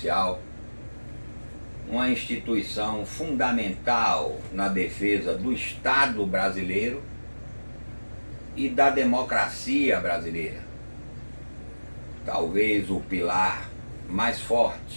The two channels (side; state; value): both; inverted; correlation -1.00